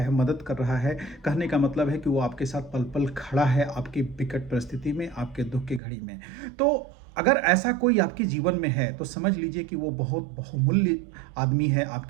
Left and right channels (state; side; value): drops out; left; at 5.8 s